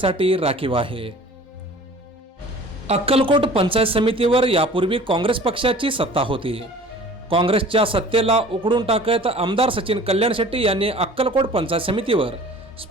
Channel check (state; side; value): normal; both; correlation 0.46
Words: राखीव आहे. अक्कलकोट पंचायत समितीवर यापूर्वी काँग्रेस पक्षाची सत्ता होती. काँग्रेसच्या सत्तेला उकडून टाकत आमदार सचिन कल्याणशेट्टी यांनी अक्कलकोट पंचायत समितीवर